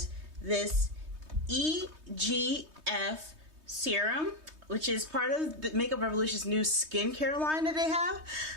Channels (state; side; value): late; left; 3.2 ms